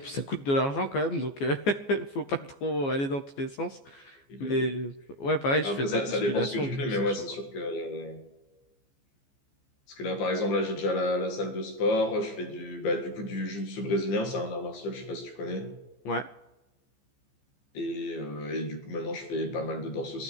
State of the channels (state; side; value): late; right; 14 ms